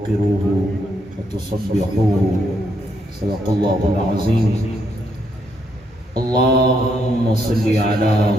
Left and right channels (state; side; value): normal; both; correlation 0.75